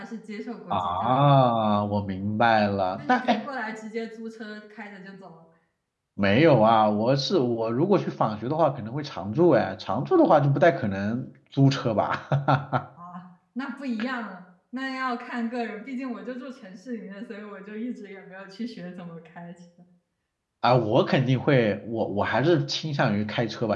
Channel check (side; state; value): both; identical; correlation 1.00